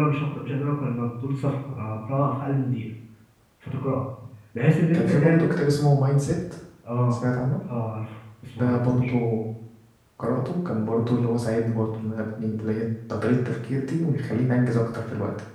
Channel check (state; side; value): identical; both; correlation 1.00